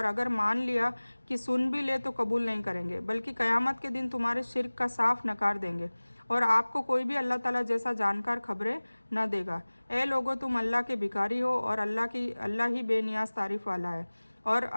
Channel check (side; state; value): both; inverted; correlation -1.00